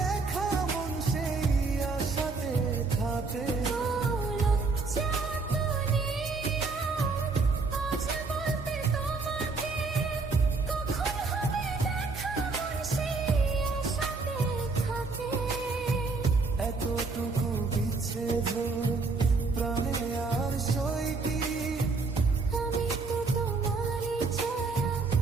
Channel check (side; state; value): left; quieter; 4.0 dB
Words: মন সেই আশাতে থাকে। এতটুকু বিচ্ছেদ প্রাণে আর সই কি, আমি তো তোমারই ছায়া,